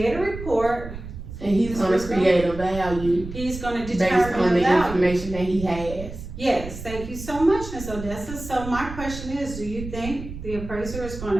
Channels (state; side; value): noise; right; rumble, 10 dB below the sound